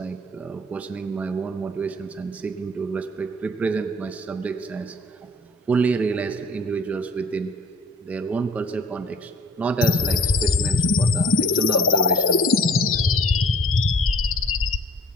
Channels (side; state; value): both; normal; correlation 0.52